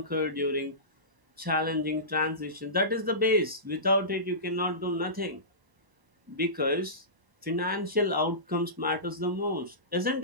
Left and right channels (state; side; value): late; left; 1.0 ms